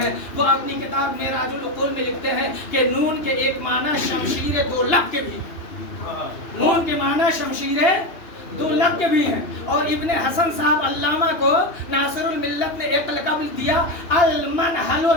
وہ اپنی کتاب معراج العقول میں لکھتے ہیں کہ نون کے ایک معنی شمشیر دو لب کے بھی. نون کے معنی شمشیر دو لب کے بھی ہیں. اور ابن حسن صاحب علامہ کو ناصر الملت نے ایک لقب دیا المنحل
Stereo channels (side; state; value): right; late; 2.8 ms